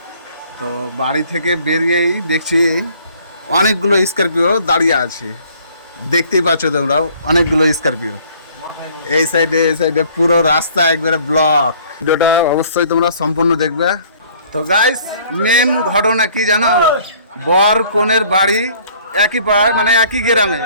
তো বাড়ি থেকে বেরিয়েই দেখছি অনেকগুলো স্করপিও দাঁড়িয়ে আছে। দেখতেই পাচ্ছ তোমরাও, অনেকগুলো স্করপিও। এই সাইডে পুরো রাস্তা একবারে ব্লক। ভিডিওটা অবশ্যই তোমরা সম্পূর্ণ দেখবে। তো গাইস, মেন ঘটনা কি জানো? বর কনের বাড়ি একই পাড়ায়, মানে একই গ্রামে।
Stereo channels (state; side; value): inverted; both; correlation -0.57